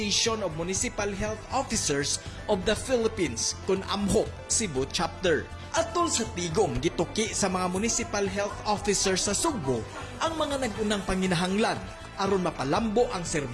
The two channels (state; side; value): identical; both; correlation 1.00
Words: of Municipal Health Officers of the Philippines kun AMHOP Cebu Chapter. Atol sa tigom gituki sa mga municipal health officers sa Sugbo ang mga nagunang panginahanglan aron mapalambo ang